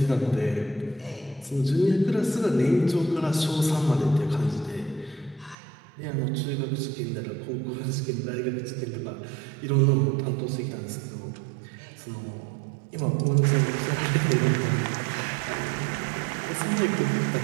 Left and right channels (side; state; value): left; drops out; at 5.6 s